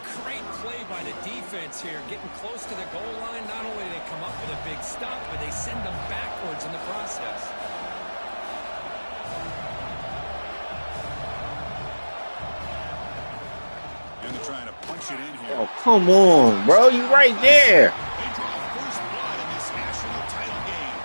great play by the defense here. Getting close to the goal line. Not only do they come up with a big stop, but they send them backwards in the process. And they're trying to punch it in here. Oh, come on, bro. You right there. They draw first blood in this national title game.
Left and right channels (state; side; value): inverted; both; correlation -1.00